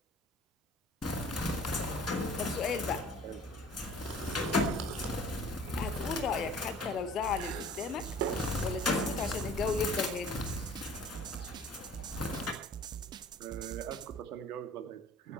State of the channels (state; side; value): normal; both; correlation 0.48